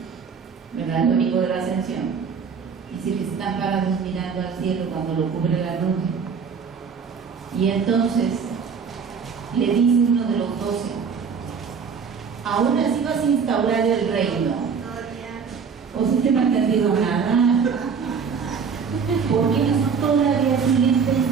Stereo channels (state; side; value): quieter; left; 6.1 dB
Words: ¿verdad? El domingo de la ascensión, dice que están parados mirando al cielo cuando lo cubre la nube. Y entonces le dice uno de los 12, ¿aún así vas a instaurar el reino? ¿O si te no ha entendido nada? Porque ellos todavía siguen